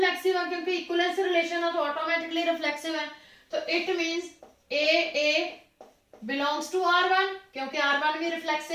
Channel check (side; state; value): both; identical; correlation 1.00